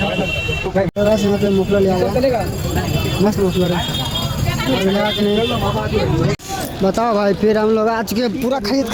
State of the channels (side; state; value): both; identical; correlation 1.00